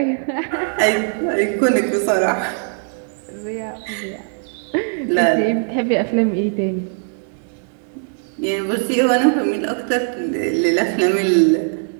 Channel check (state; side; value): silent; left; digital silence